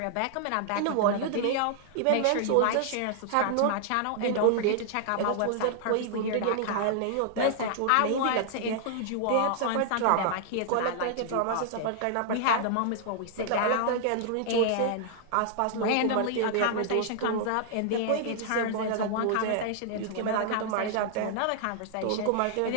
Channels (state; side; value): different; both; correlation -0.01